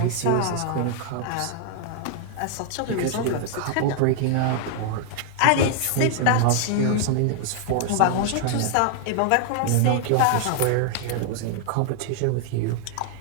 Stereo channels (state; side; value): different; both; correlation 0.00